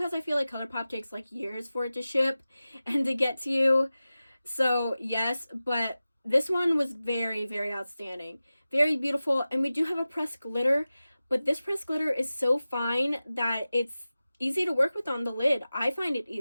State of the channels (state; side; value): inverted; both; correlation -0.95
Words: I feel like ColourPop takes like years for it to ship and to get to you. So, yes, but this one was very, very outstanding. Very beautiful, and we do have a pressed glitter, but this pressed glitter is so fine that it's easy to work with on the lid. I find it